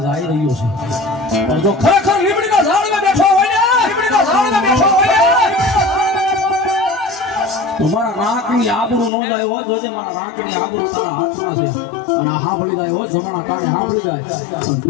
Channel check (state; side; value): drops out; right; at 9.1 s